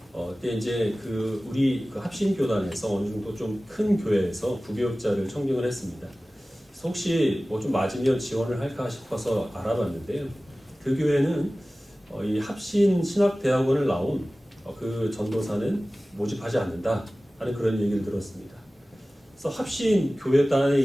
그때 이제 우리 합신교단에서 어느 정도 좀 큰 교회에서 부교육자를 청빙을 했습니다. 그래서 혹시 뭐 좀 맞으면 지원을 할까 싶어서 알아봤는데요. 그 교회는 이 합신 신학대학원을 나온 그 전도사는 모집하지 않는다 하는 그런 얘기를 들었습니다. 그래서 합신 교회단에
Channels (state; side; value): normal; both; correlation 0.97